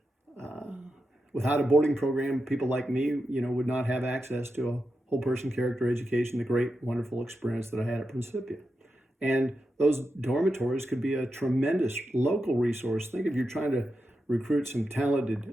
Without a boarding program, people like me, you know, would not have access to a whole person character education, the great, wonderful experience that I had at Principia. And those dormitories could be a tremendous local resource. Think if you're trying to recruit some talented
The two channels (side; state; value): both; normal; correlation 0.88